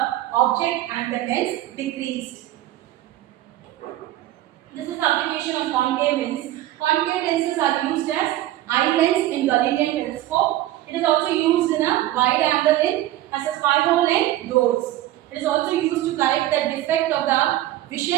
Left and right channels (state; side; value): quieter; left; 14.5 dB